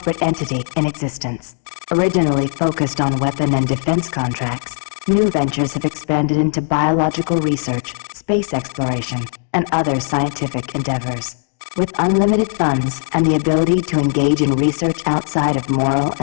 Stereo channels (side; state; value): right; silent; digital silence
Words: entity in existence. Originally focused on weapon and defense contracts, new ventures have expanded into biological research, space exploration, and other scientific endeavors. With unlimited funds and the ability to engage in research outside of moral